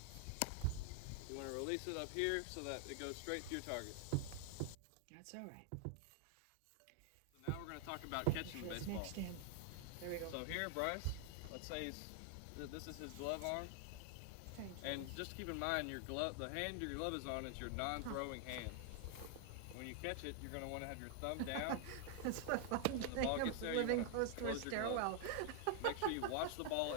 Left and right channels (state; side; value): different; both; correlation 0.00